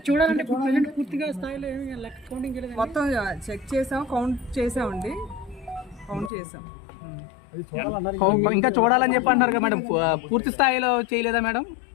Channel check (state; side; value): drops out; right; at 6.3 s